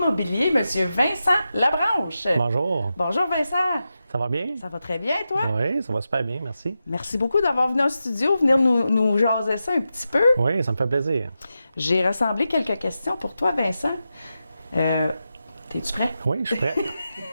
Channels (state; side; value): inverted; both; correlation -0.90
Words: M. Vincent Labranche. Bonjour. Bonjour, Vincent. Ça va bien? Ça va très bien, toi? Oui, ça va super bien, merci. Merci beaucoup d'avoir venu au studio, venir nous jaser ça un petit peu. Oui, ça me fait plaisir. J'ai rassemblé quelques questions pour toi, Vincent. T'es-tu prêt? Oui, je suis prêt.